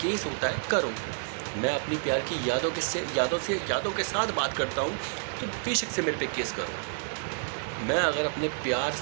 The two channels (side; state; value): left; silent; digital silence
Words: केस होता है करो। मैं अपनी प्यार की यादों के साथ बात करता हूँ, तो बेशक से मेरे पे केस करो। मैं अगर अपने प्यार